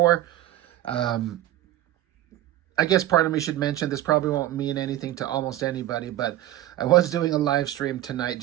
Um, I guess part of me should mention this probably won't mean anything to almost anybody, but I was doing a live stream tonight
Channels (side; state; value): left; quieter; 14.0 dB